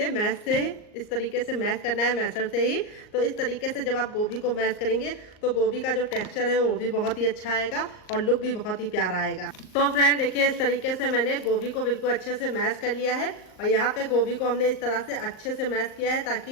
मैश से इस तरीके से मैश करना है, मैशर से ही। तो इस तरीके से जब आप गोभी को मैश करेंगे तो गोभी का जो टेक्सचर है वो भी बहुत ही अच्छा आएगा और लुक भी बहुत ही प्यारा आएगा। तो फ्रेंड देखिए, इस तरीके से मैंने गोभी को बिल्कुल अच्छे से मैश कर लिया है और यहाँ पे गोभी को हमने इस तरह से अच्छे से मैश किया है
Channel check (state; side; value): late; right; 38 ms